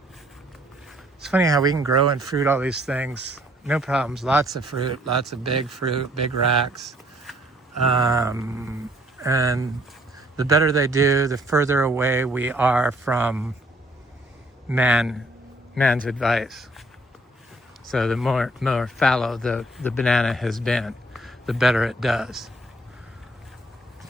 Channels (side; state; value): both; normal; correlation 0.63